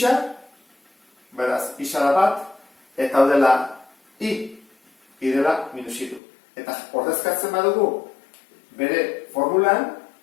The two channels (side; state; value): right; drops out; at 6.2 s